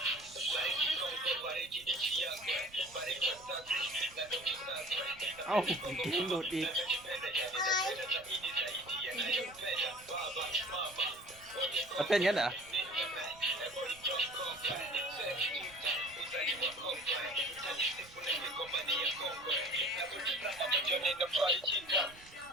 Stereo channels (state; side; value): noise; right; rumble, 23 dB below the sound